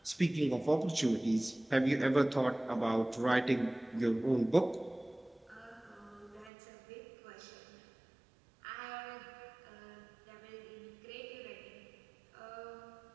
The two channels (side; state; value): left; drops out; at 6.5 s